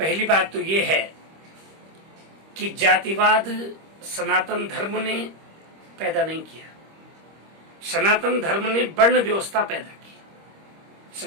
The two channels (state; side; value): late; left; 25 ms